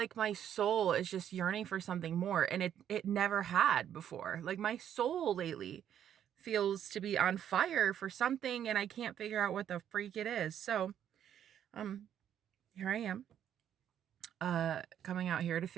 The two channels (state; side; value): quieter; left; 9.8 dB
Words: my soul is just yearning for something more, and it never had before. Like my soul lately feels to be on fire for something, and I can't figure out what the freak it is. So, um here I am coming out here to